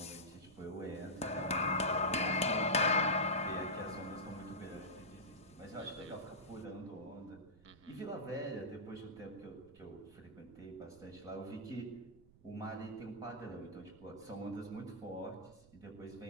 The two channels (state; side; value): noise; right; rumble, 24 dB below the sound